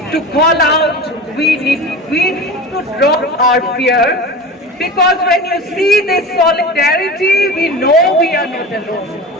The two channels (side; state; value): both; normal; correlation 0.32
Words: to call out. We need to drop our fear. Because when you see this solidarity, we know we are not alone.